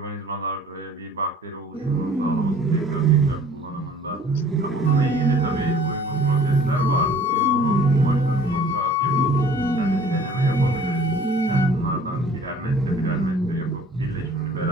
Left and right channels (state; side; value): normal; both; correlation 0.51